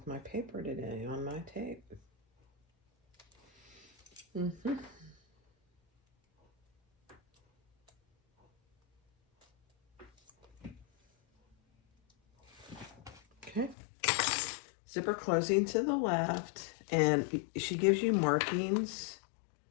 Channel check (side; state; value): right; drops out; at 13.8 s